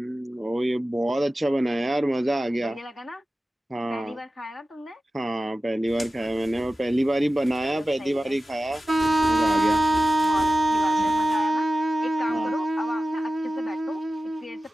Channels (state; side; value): normal; both; correlation 0.95